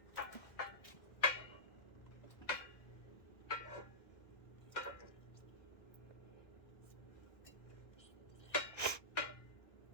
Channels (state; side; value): late; right; 1.6 ms